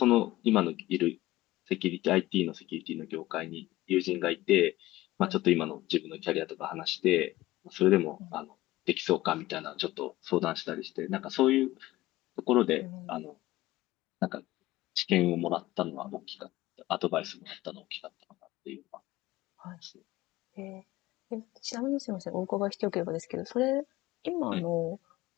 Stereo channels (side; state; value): right; quieter; 17.4 dB